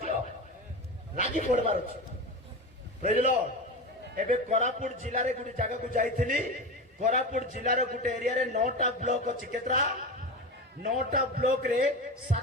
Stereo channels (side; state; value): both; normal; correlation 0.24